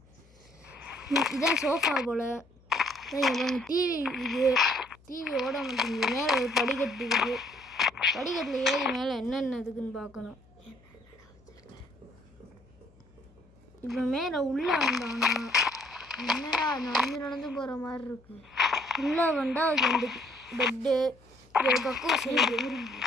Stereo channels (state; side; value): noise; left; hum, 28 dB below the sound